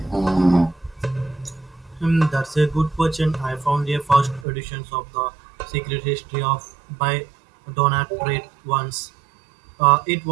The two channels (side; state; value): left; drops out; at 4.5 s